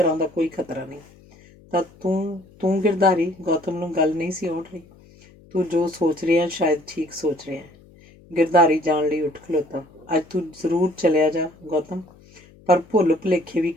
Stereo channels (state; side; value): noise; left; hum, 26 dB below the sound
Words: ਦਾ ਕੋਈ ਖਤਰਾ ਨਹੀਂ। ਤਾਂ ਤੂੰ ਗਿਰਧਾਰੀ? ਗੌਤਮ ਨੂੰ ਗੱਲ ਨਹੀਂ ਸੀ ਆਉਣ ਰਹੀ। ਤੂੰ ਜੋ ਸੋਚ ਰਿਹਾ ਸ਼ਾਇਦ ਠੀਕ ਸੋਚ ਰਿਹਾ ਹੈ। ਗਿਰਧਾਰੀ ਜਾਣ ਲਈ ਉੱਠ ਖਲੋਤਾ। ਅੱਜ ਤੂੰ ਜ਼ਰੂਰ ਚਲਿਆ ਜਾ ਗੌਤਮ, ਪਰ ਭੁੱਲ ਭੁਲੇਖੇ ਵੀ